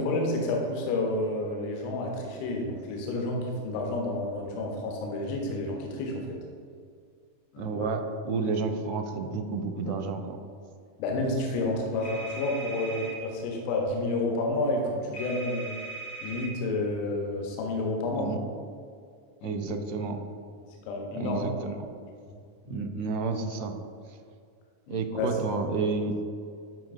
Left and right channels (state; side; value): late; right; 29 ms